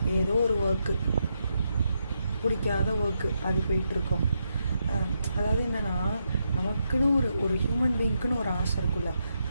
ஏதோ ஒரு ஒர்க்கு, பிடிக்காத ஒர்க்கு, அது போயிட்டுருக்கோம். அதாவது என்னென்னா, நமக்குன்னு ஒரு ஹியூமன் பீயிங்க்குன்னு ஒரு ஆசை இருக்குல்ல,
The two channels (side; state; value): both; inverted; correlation -0.82